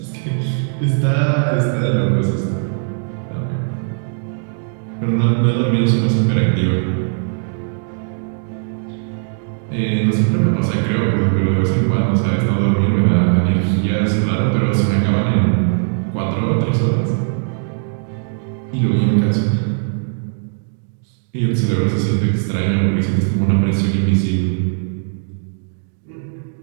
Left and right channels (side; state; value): left; silent; digital silence